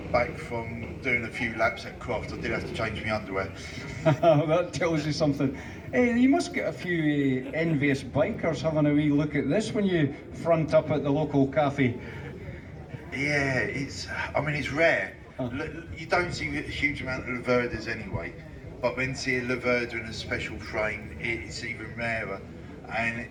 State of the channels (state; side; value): identical; both; correlation 1.00